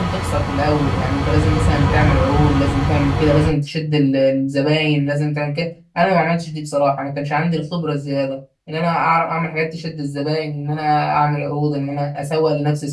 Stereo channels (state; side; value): identical; both; correlation 1.00